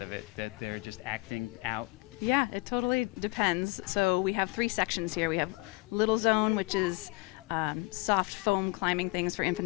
of it, that they're just acting out. Yeah, it totally depends. So we have 3 sections here. We have Little Zone, which is soft foam climbing things for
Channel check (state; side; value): quieter; right; 24.4 dB